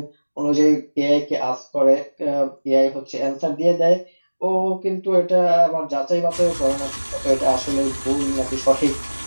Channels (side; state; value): both; inverted; correlation -1.00